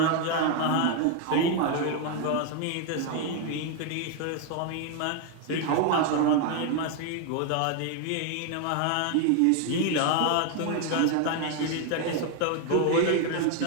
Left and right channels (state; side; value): different; both; correlation 0.00